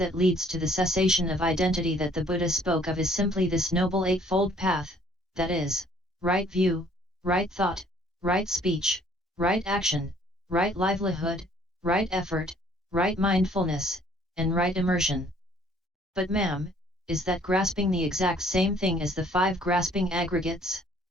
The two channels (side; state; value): both; normal; correlation 0.60